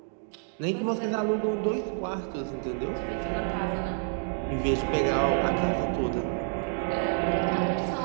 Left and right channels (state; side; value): silent; left; 59 dB below the other